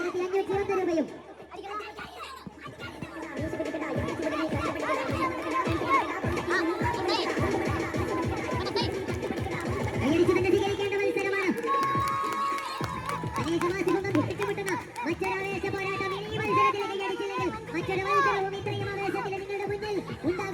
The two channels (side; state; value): both; identical; correlation 1.00